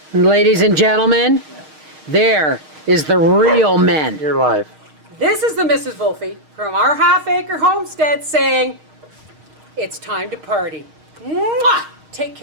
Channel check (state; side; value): late; left; 6.5 ms